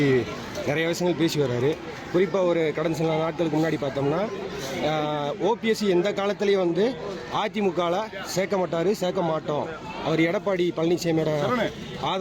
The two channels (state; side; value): identical; both; correlation 1.00